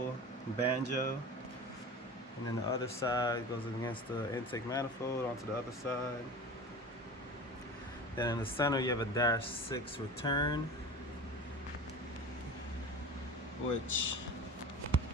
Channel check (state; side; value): normal; both; correlation 0.34